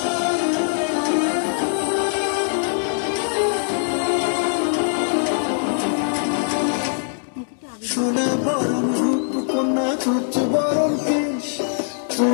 সোনা বরণ রূপ কন্যা তুচ্ছ বরণ কেশ,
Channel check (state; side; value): silent; right; digital silence